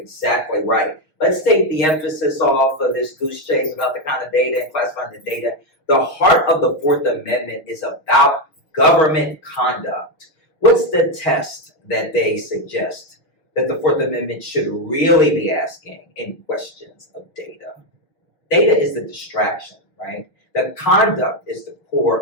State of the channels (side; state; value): right; late; 6.4 ms